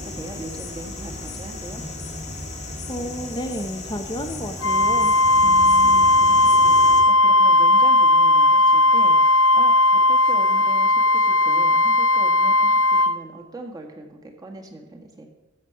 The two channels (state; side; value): normal; both; correlation -0.02